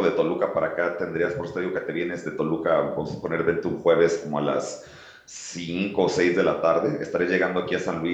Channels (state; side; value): identical; both; correlation 1.00